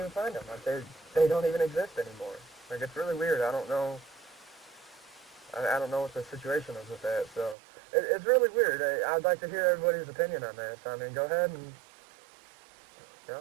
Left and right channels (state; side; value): drops out; left; at 7.6 s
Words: find them. Like, they don't even exist anymore. Like, it's really weird. I don't know what the situation is with that, so it's really weird. I'd like to hear everybody's opinion on that, so I mean, go ahead and,